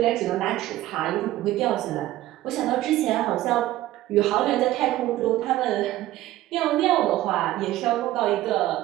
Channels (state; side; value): quieter; left; 15.2 dB